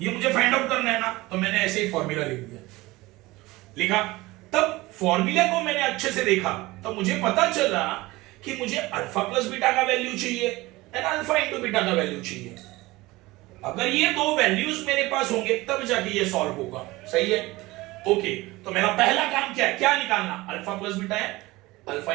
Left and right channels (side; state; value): left; quieter; 20.3 dB